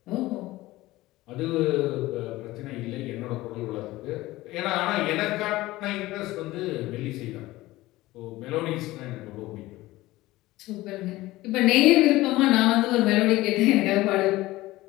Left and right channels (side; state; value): right; quieter; 18.1 dB